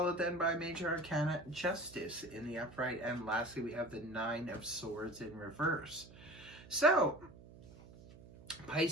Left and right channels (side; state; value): right; noise; hum, 19 dB below the sound